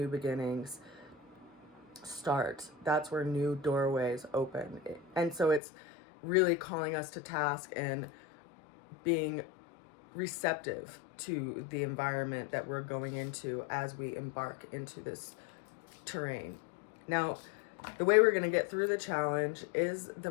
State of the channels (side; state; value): right; drops out; at 5.6 s